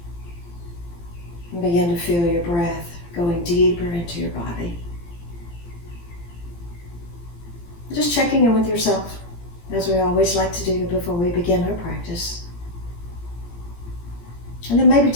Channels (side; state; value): right; late; 17 ms